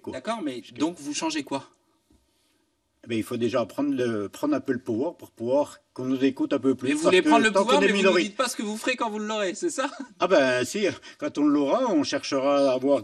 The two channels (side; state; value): both; identical; correlation 1.00